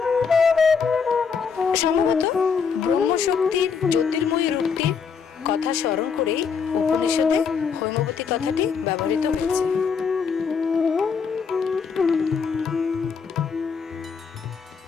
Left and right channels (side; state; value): right; quieter; 6.0 dB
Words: সম্ভবত ব্রহ্মশক্তির জ্যোতির্ময়ী রূপটির কথা স্মরণ করেই উপনিষদে হৈমবতী কথাটি ব্যবহৃত হয়েছে।